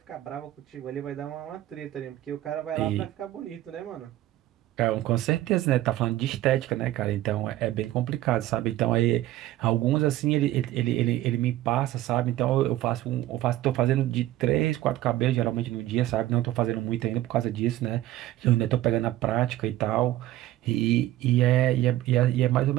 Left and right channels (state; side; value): quieter; left; 14.9 dB